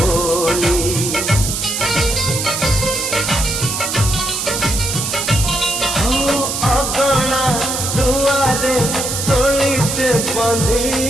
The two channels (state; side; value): noise; right; hiss, 2 dB below the sound